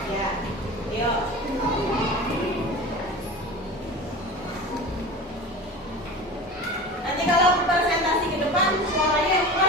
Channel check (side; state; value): both; normal; correlation 0.33